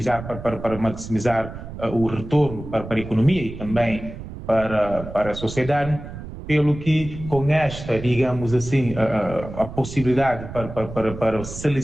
para maximizar o retorno para a economia e também para a sociedade, pelo que com esta, digamos assim, a possibilidade para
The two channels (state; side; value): noise; right; rumble, 11 dB below the sound